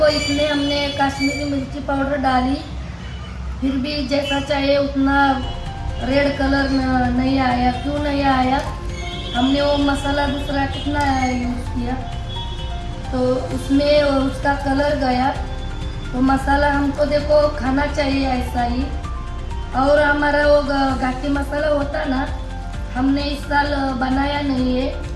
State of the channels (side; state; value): both; identical; correlation 1.00